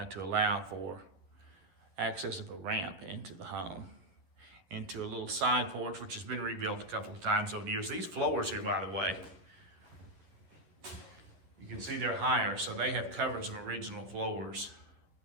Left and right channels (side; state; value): left; late; 11 ms